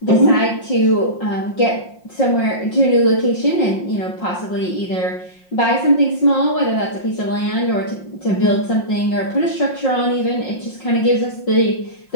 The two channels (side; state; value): right; late; 5.6 ms